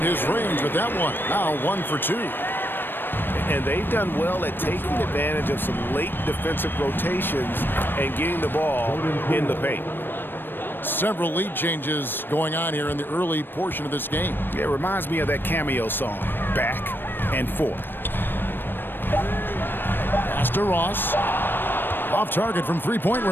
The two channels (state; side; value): late; right; 0.096 ms